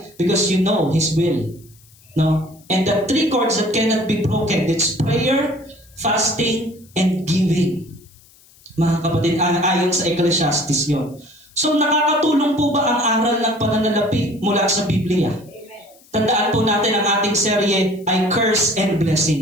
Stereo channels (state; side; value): noise; left; hiss, 28 dB below the sound